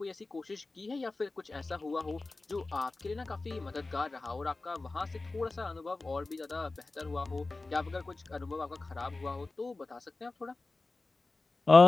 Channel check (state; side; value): quieter; right; 3.4 dB